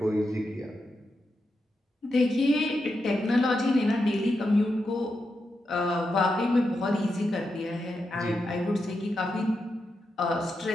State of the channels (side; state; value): both; normal; correlation 0.86